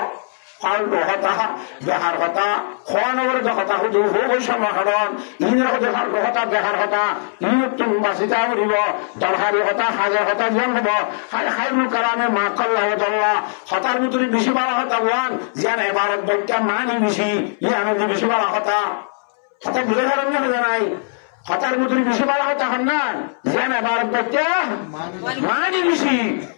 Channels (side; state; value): right; silent; 66 dB below the other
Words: ফালতু হতা দেহার হতা খোয়া নগরে হতা হুদু হই সমাহরণ ইনের হতে ফালতু হতা দেহার হতা ইনুতুন বাসিতা করিব দরহারি হতা হাজার হতা জ্ঞান হব খায়রুল কালামে মা কাল্লাহুল্লাহ হতার ভিতরে বেশি বাড়া হতা ওয়ান জ্ঞান এবারত বৈজ্ঞান মানি বেশি ইয়ান বেশি বাড়া হতা হতা বুঝে পারেন না জানাই হতার ভিতরে বেশি বাড়া হতা হন না জ্ঞান এবারত বৈজ্ঞান মানি বেশি